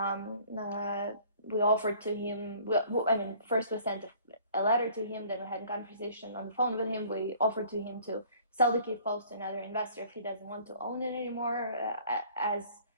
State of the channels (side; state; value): both; inverted; correlation -0.53